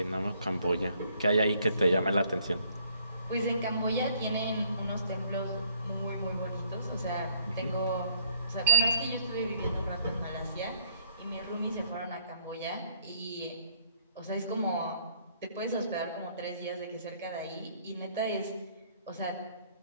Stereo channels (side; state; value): both; inverted; correlation -0.65